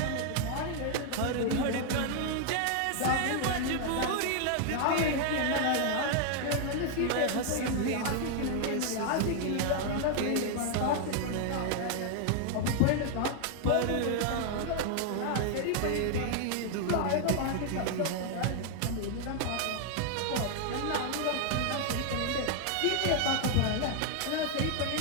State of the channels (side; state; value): both; different; correlation 0.00